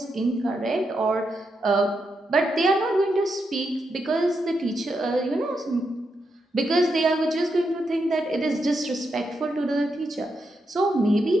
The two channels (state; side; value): normal; both; correlation 0.83